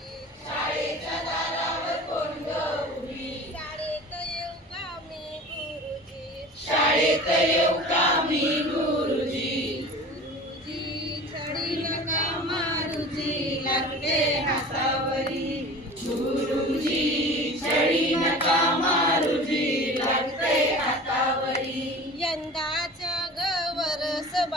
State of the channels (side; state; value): both; normal; correlation 0.39